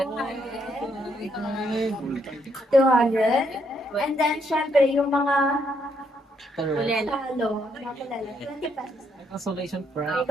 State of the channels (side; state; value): both; normal; correlation 0.74